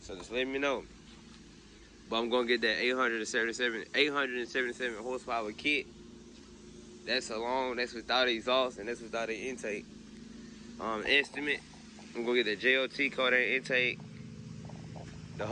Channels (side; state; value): both; identical; correlation 1.00